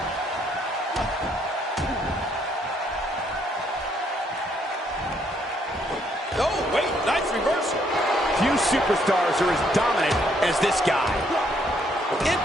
Oh, wait, nice reversal. Few superstars are as dominant as this guy.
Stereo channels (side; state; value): both; normal; correlation 0.70